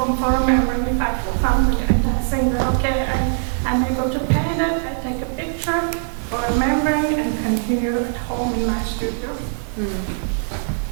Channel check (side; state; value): left; silent; 65 dB below the other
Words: remembering if I feel something, and I think that okay, I'm able to paint it. I take a picture for remembering and continue at home in my studio.